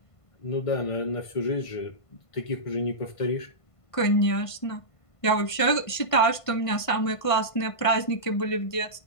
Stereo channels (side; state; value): right; late; 1.5 ms